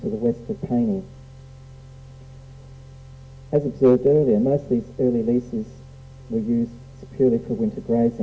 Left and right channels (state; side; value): identical; both; correlation 1.00